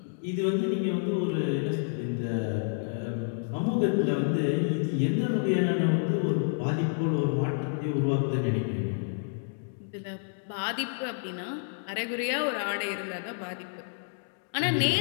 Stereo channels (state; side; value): silent; right; digital silence